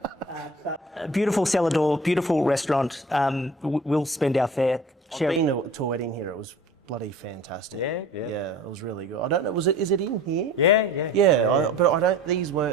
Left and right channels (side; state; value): both; normal; correlation 0.43